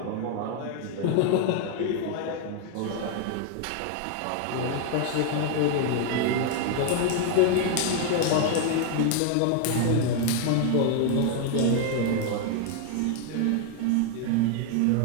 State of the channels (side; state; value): both; different; correlation 0.00